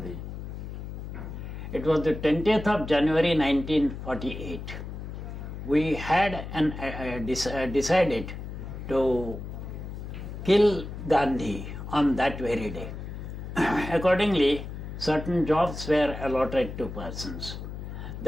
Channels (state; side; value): noise; left; hum, 8 dB below the sound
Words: It was the 20th of January 1948. We had decided to kill Gandhi on that very day. Accordingly, certain jobs were allotted to persons.